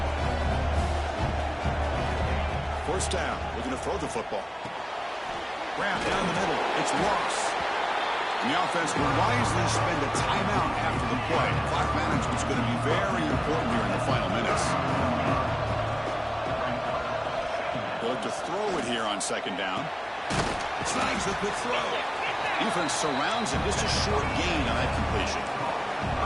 First down. We're going to throw the football. Grab down the middle. It's Ross. And the offense will wisely spend a timeout after the play. Clock management's going to be very important here in the final minutes. They'll look to throw it here on second down. Slides the quick throw. Defense surrounds him. Just a short gain on that completion.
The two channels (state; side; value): identical; both; correlation 1.00